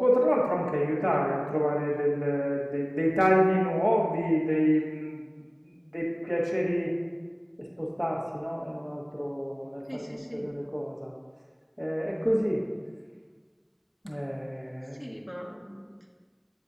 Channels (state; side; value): identical; both; correlation 1.00